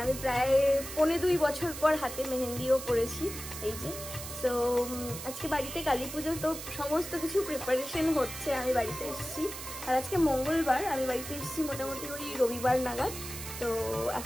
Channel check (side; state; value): right; noise; hiss, 9 dB below the sound